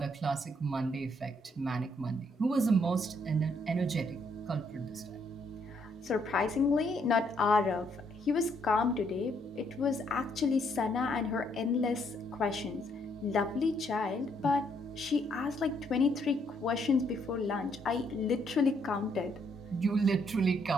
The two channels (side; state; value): both; normal; correlation 0.71